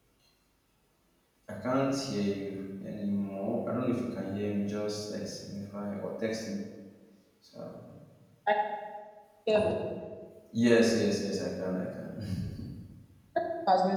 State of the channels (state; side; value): identical; both; correlation 1.00